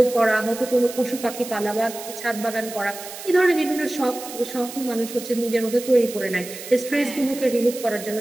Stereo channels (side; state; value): right; noise; hiss, 12 dB below the sound